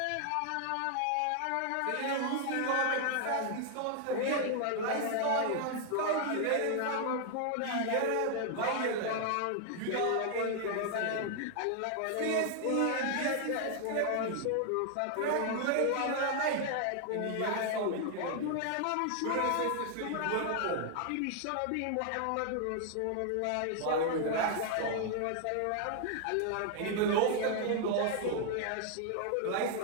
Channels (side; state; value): both; different; correlation 0.00